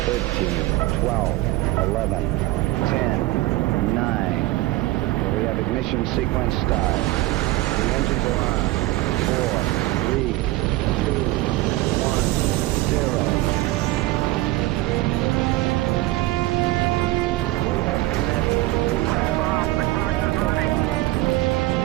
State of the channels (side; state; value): left; quieter; 18.1 dB